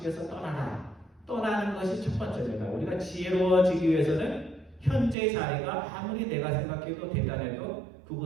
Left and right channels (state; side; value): drops out; left; at 5.2 s